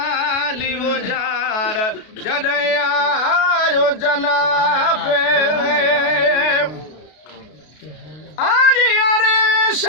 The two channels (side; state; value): right; late; 33 ms